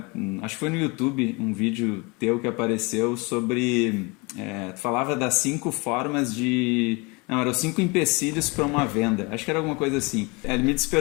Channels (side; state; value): right; quieter; 27.9 dB